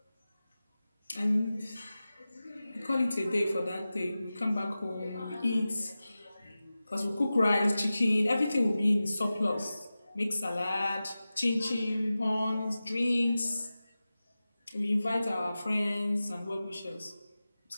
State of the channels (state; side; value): inverted; both; correlation -0.95